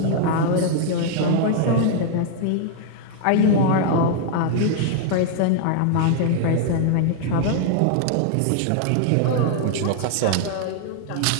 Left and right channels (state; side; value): different; both; correlation 0.00